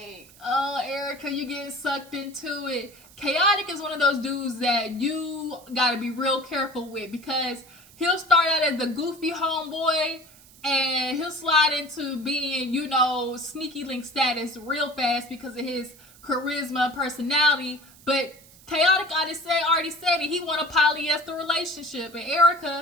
oh, Erica, you getting sucked into it. Khaotic is one of those dudes that you gotta be real careful with, because he'll start out as the goofy homeboy, and he'll slide into being, sneaky link status real fast because of his charisma and personality. But Khaotic already said it. He want a polyester relationship. And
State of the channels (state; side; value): noise; right; hiss, 24 dB below the sound